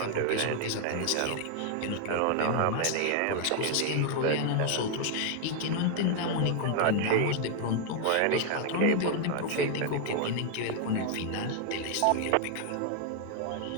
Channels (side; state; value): both; different; correlation 0.00